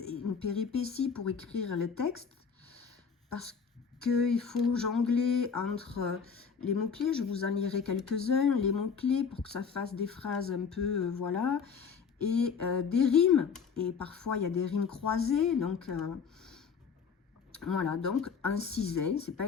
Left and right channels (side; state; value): right; quieter; 6.2 dB